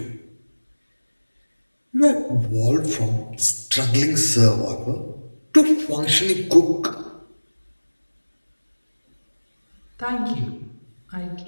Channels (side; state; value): both; inverted; correlation -1.00